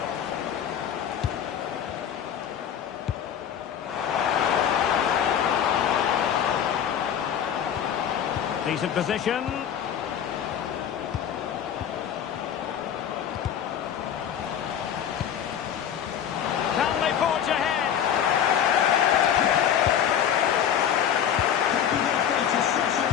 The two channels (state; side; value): quieter; right; 9.0 dB